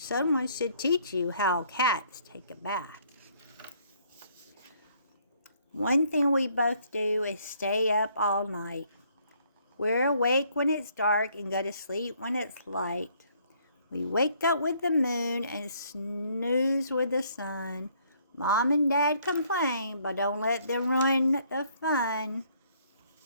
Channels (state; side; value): inverted; both; correlation -0.65